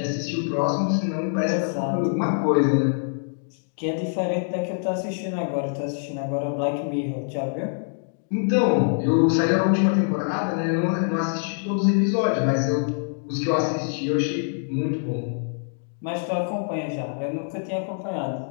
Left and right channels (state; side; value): silent; right; digital silence